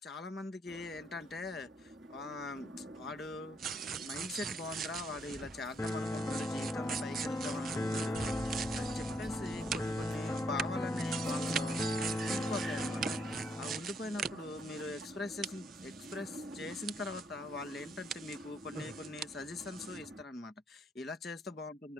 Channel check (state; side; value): normal; both; correlation 0.72